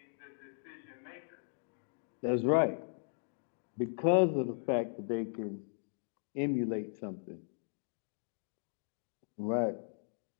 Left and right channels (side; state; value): right; silent; digital silence